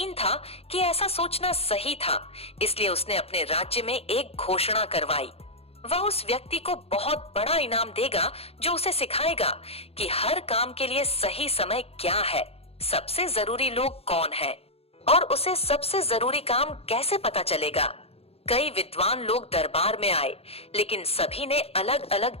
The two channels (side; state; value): right; late; 0.29 ms